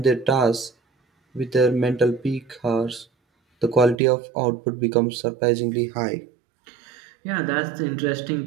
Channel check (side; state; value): left; drops out; at 4.0 s